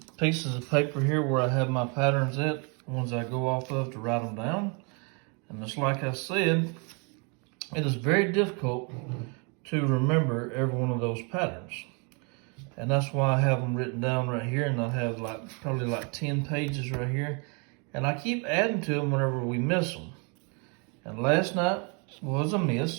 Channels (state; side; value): quieter; left; 34.4 dB